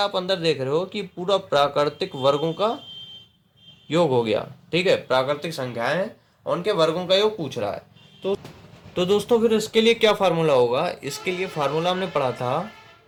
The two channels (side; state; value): both; identical; correlation 1.00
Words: अंदर देख रहे हो कि पूरा प्राकृतिक वर्गों का योग हो गया। ठीक है, प्राकृतिक संख्याएं हैं और उनके वर्गों का योग पूछ रहा है। तो दोस्तों फिर इसके लिए क्या फार्मूला होगा, इसके लिए फार्मूला हमने पढ़ा था